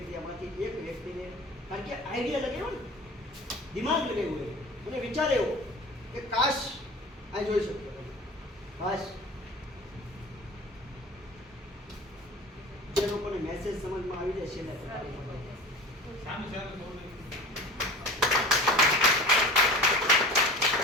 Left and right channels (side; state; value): both; normal; correlation 0.38